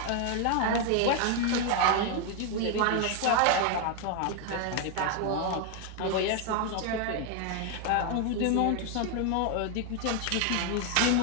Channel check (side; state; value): both; different; correlation 0.01